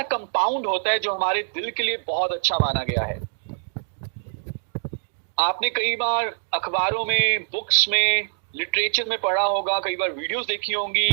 कंपाउंड होता है जो हमारे दिल के लिए बहुत अच्छा माना गया है। आपने कई बार अखबारों में, बुक्स में, लिटरेचर में पढ़ा होगा, कई बार वीडियोस देखी होंगी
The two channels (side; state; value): left; silent; digital silence